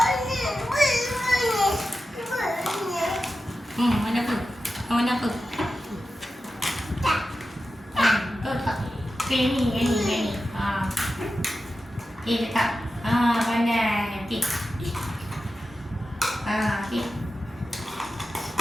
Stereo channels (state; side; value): normal; both; correlation 0.92